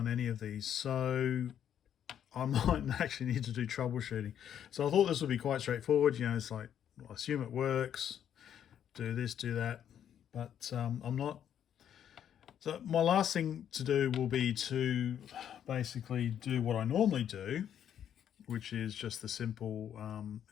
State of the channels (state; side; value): quieter; right; 9.6 dB